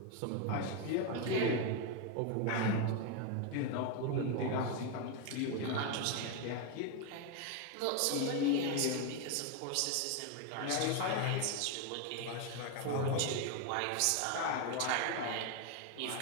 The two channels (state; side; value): different; both; correlation 0.02